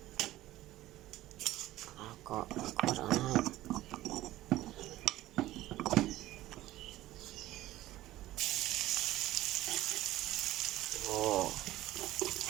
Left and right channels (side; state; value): left; quieter; 15.6 dB